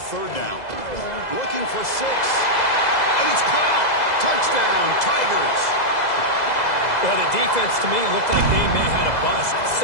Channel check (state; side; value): late; right; 2.0 ms